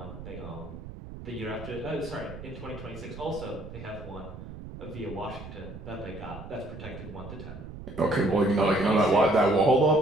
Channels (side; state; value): right; noise; rumble, 12 dB below the sound